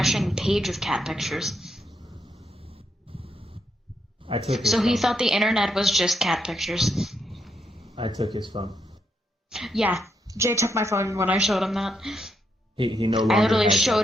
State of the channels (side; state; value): both; normal; correlation 0.79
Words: page of cat pictures. I took his So phone. he thought the internet was just cat pictures. I took his phone. Yeah, Jay took my phone when I showed him that. He no longer I literally has showed